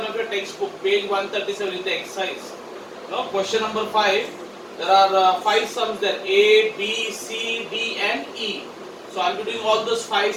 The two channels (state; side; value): identical; both; correlation 1.00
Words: of your textbook, page 137 in the exercise. Now, question number 5. There are 5 sums there: A, B, C, D, and E. So, I'll be doing all those 5